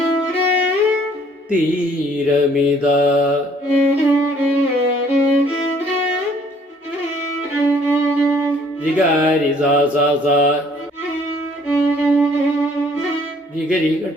തീരമിത രിഗാരി സാ സാ സാ രിഗരി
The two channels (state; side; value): normal; both; correlation 0.60